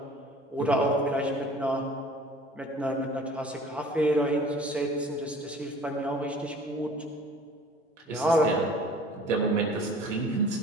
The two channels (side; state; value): both; normal; correlation 0.48